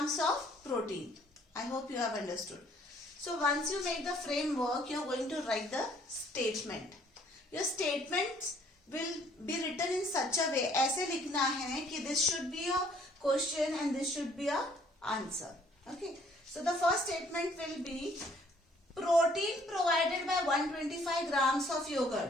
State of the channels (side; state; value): both; normal; correlation 0.61